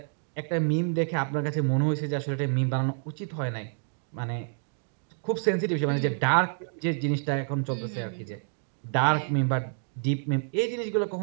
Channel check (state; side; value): silent; left; digital silence